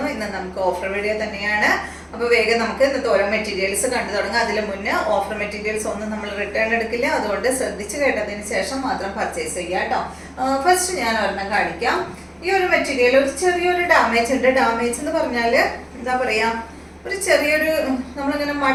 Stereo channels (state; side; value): identical; both; correlation 1.00